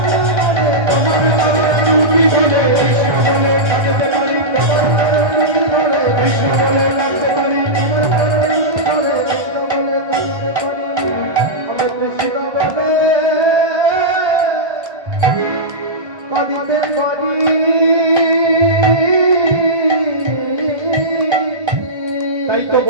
তোমার চরণ দুটি ধরে কৃষ্ণ বলে কাঁদিতে পারি, কৃষ্ণ বলে কাঁদতে পারি, কাঁদিতে পারি, তাই তো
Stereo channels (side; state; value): left; late; 1.3 ms